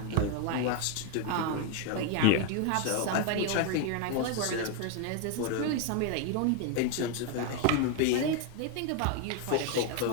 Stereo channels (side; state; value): both; different; correlation 0.01